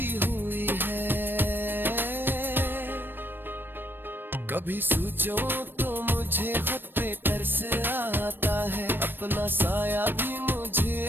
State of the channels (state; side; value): late; left; 0.096 ms